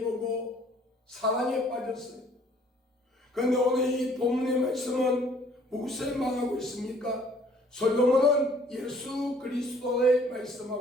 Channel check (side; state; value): both; normal; correlation 0.58